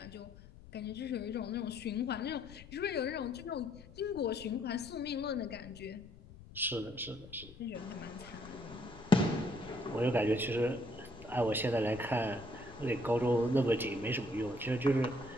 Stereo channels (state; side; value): noise; left; rumble, 18 dB below the sound